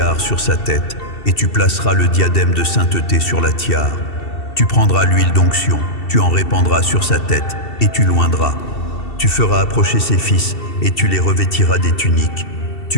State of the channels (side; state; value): right; late; 2.7 ms